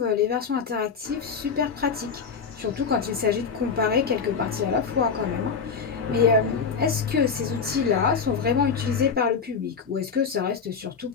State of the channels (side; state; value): right; quieter; 5.8 dB